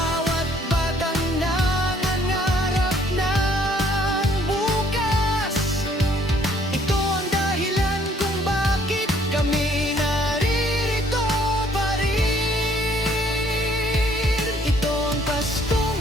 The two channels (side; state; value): both; normal; correlation 0.62